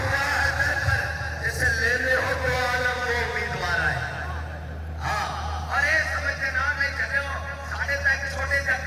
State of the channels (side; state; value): both; identical; correlation 1.00